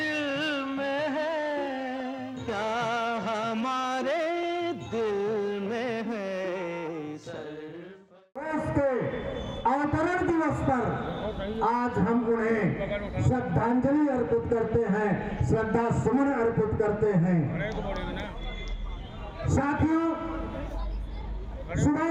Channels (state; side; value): identical; both; correlation 1.00